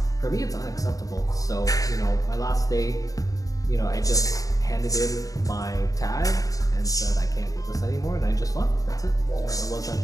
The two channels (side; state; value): right; late; 0.17 ms